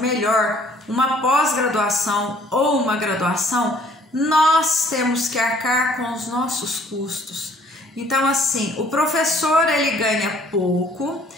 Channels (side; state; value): both; normal; correlation 0.58